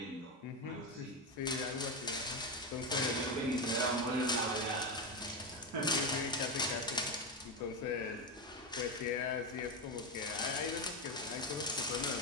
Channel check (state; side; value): normal; both; correlation 0.12